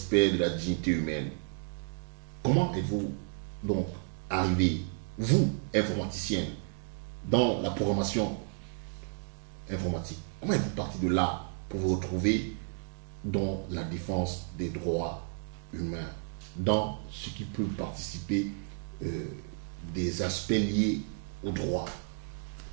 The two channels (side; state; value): left; silent; 56 dB below the other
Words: de la dignité humaine. Comment êtes-vous donc arrivé, vous, informaticien, dans la programmation informatique? Comment êtes-vous parti de là pour vous retrouver dans la défense des droits humains, dans ce qui peut participer des aspects liés au droit?